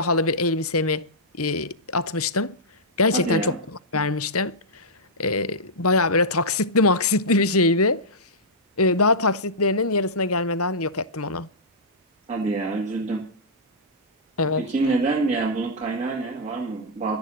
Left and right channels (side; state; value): both; normal; correlation -0.12